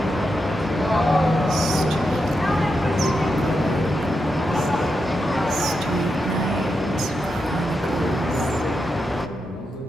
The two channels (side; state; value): both; normal; correlation 0.86